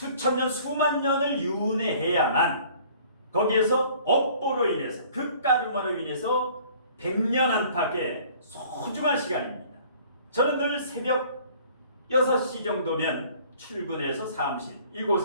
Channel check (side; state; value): both; inverted; correlation -0.53